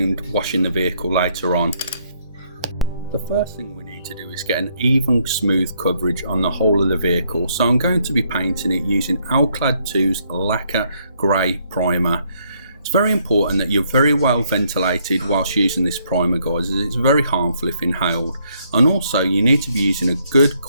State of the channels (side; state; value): both; inverted; correlation -0.71